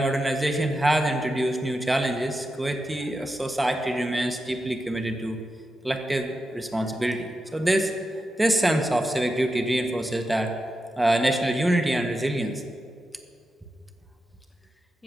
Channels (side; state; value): both; normal; correlation 0.89